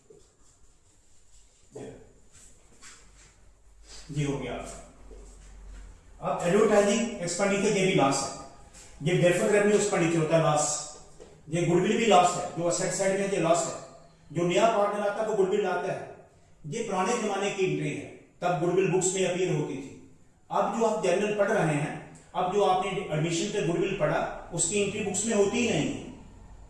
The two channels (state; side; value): identical; both; correlation 1.00